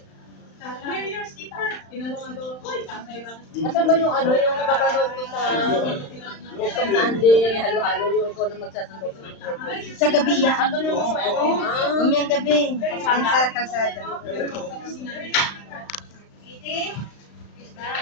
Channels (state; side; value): late; right; 35 ms